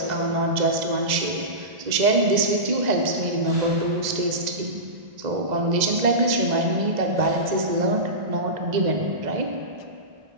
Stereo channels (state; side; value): late; left; 1.9 ms